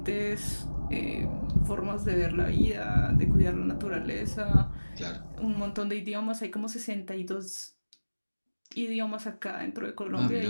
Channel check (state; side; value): inverted; both; correlation -1.00